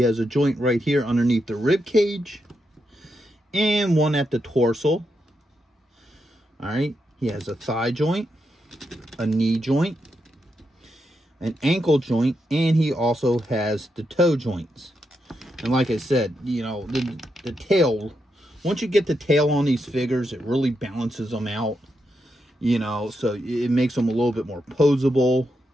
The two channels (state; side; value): normal; both; correlation 0.84